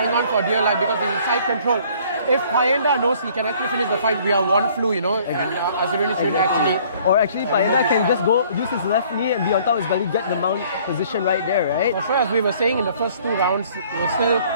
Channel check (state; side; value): inverted; both; correlation -0.57